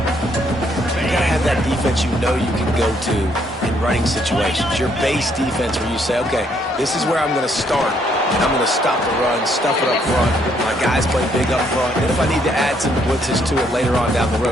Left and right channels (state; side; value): normal; both; correlation 0.70